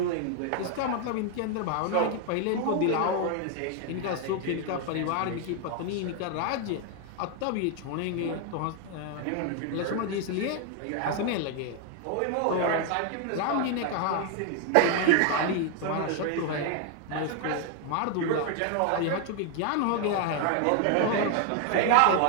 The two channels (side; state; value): both; different; correlation 0.00